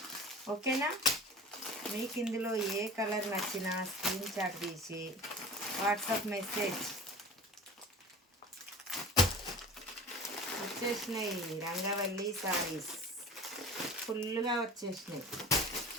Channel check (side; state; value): both; normal; correlation 0.39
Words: ఓకేనా, మీకు ఇందులో ఏ కలర్ నచ్చినా స్క్రీన్ షాట్ తీసి వాట్సాప్ మెసేజ్ వచ్చేసినాయి. రంగవల్లి సారీస్ ఫుల్గా వచ్చేసినాయి.